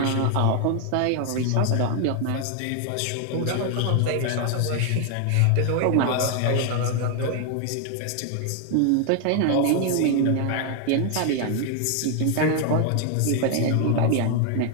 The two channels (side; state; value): both; different; correlation 0.00